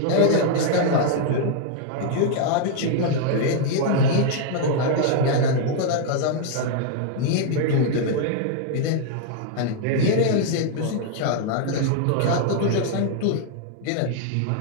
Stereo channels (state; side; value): different; both; correlation 0.00